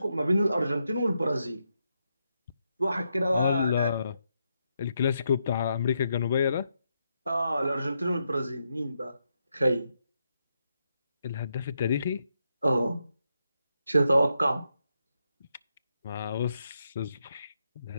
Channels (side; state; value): both; inverted; correlation -0.82